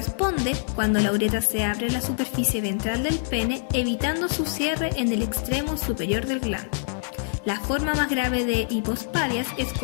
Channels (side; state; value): right; silent; digital silence